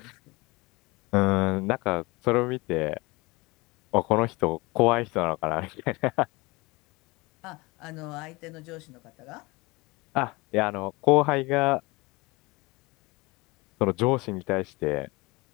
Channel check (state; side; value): quieter; right; 23.9 dB